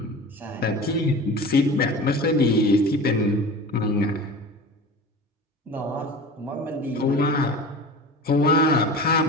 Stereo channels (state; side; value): normal; both; correlation 0.35